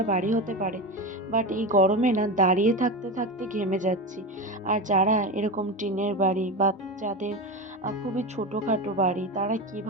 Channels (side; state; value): both; normal; correlation 0.21